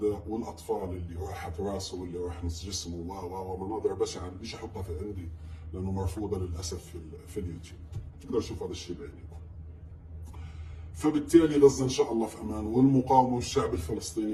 والاطفال اللي راحت راسه واللي راح نص جسمه ومناظر بشعه. مش احطها في عندي لانه مرفوضه للاسف في اليوتيوب، تقدر تشوف هذا الشيء بعينكم. فبالتالي غزه ان شاء الله في امان، والمقاومه والشعب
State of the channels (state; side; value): identical; both; correlation 1.00